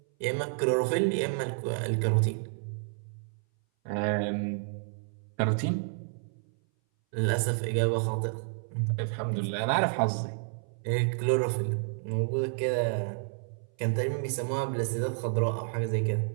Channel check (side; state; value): left; silent; 58 dB below the other